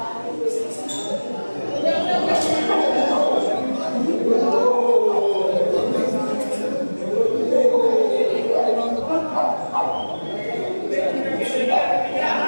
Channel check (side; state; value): both; inverted; correlation -1.00